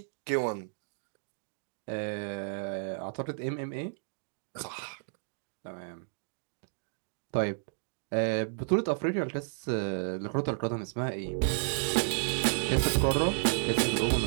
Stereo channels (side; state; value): left; silent; digital silence